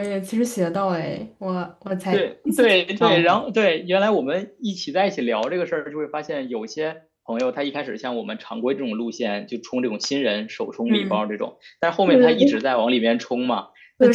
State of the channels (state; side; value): identical; both; correlation 1.00